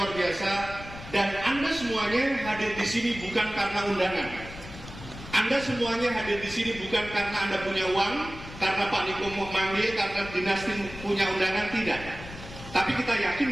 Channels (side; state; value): left; noise; rumble, 14 dB below the sound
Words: biasa dan Anda semuanya hadir di sini bukan karena undangan. Anda semuanya hadir di sini bukan karena Anda punya uang, karena Pak Niko mau manggil, karena dinasti punya undangan, tidak. Tapi kita